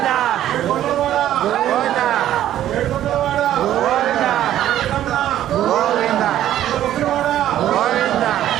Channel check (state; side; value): quieter; left; 12.2 dB